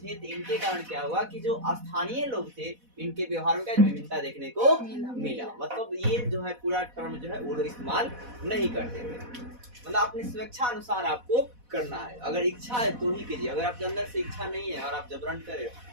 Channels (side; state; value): left; late; 4.1 ms